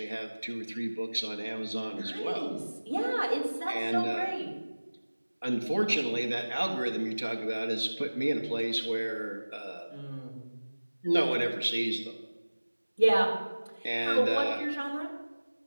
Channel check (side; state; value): both; inverted; correlation -1.00